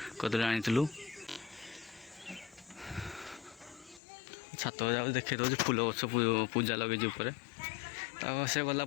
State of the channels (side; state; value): right; drops out; at 4.0 s